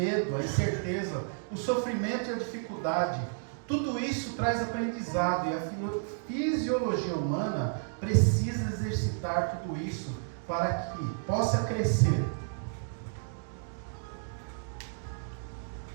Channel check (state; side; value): silent; left; digital silence